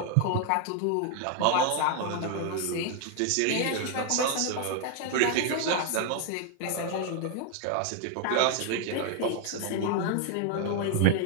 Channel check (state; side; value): different; both; correlation 0.01